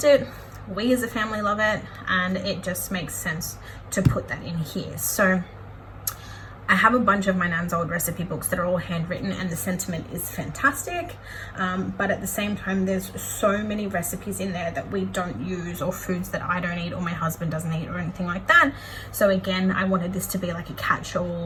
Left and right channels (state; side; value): identical; both; correlation 1.00